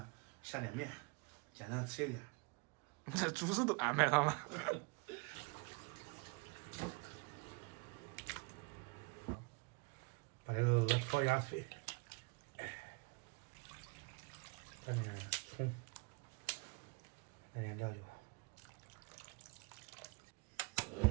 下点面，简单吃一点。这主食都安排上了。把这个鹅焯下水，蘸点葱，来点料酒。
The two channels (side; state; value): left; quieter; 30.2 dB